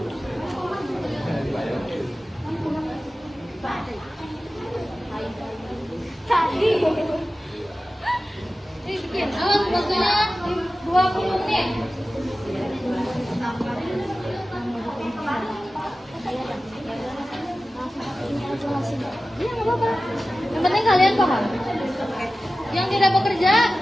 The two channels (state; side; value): normal; both; correlation 0.95